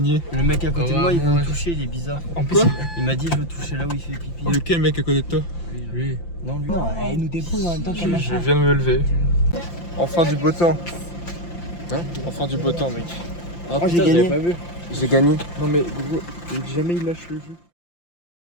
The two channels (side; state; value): right; late; 5.8 ms